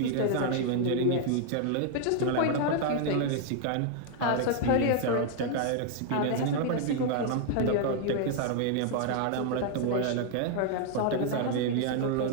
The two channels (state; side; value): different; both; correlation 0.00